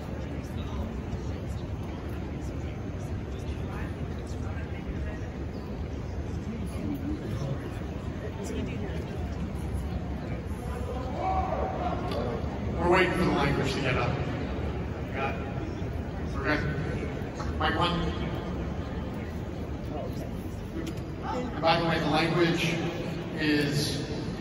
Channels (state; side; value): identical; both; correlation 1.00